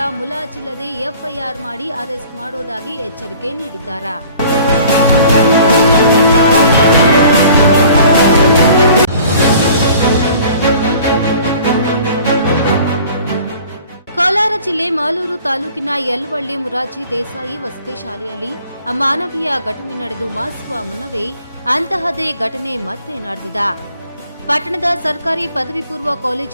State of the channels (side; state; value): both; inverted; correlation -0.50